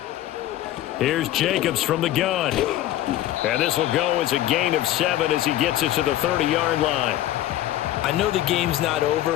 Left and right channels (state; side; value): quieter; right; 13.9 dB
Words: Here's Jacobs from the gun. And this will go as a gain of 7 as he gets it to the 30-yard line. I know the game's not